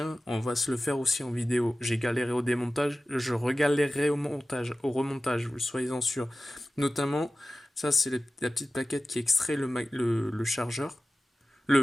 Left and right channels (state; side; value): normal; both; correlation 0.95